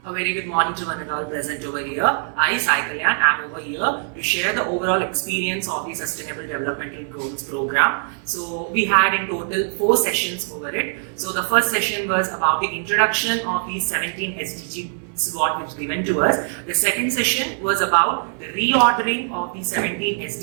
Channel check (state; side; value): silent; left; 63 dB below the other